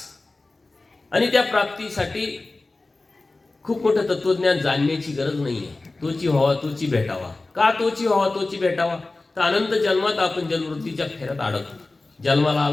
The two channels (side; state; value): right; quieter; 3.2 dB